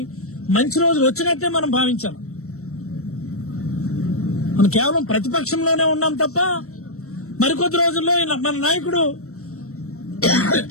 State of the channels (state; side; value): late; right; 0.64 ms